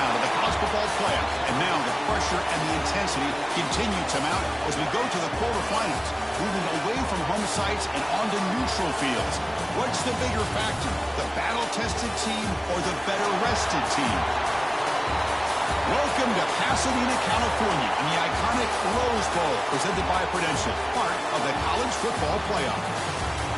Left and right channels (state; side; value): identical; both; correlation 1.00